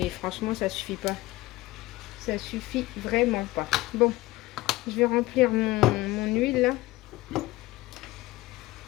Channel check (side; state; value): right; quieter; 18.8 dB